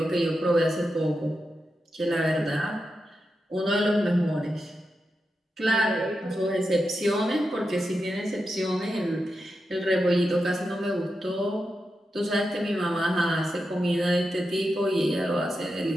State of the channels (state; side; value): normal; both; correlation 0.88